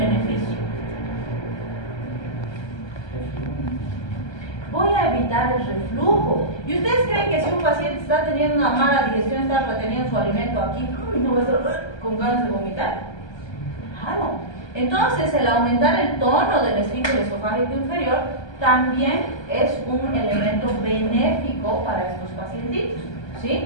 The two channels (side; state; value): right; late; 1.3 ms